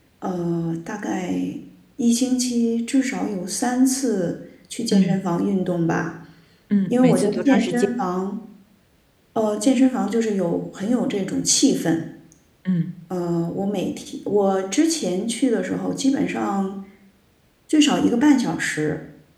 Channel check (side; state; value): both; identical; correlation 1.00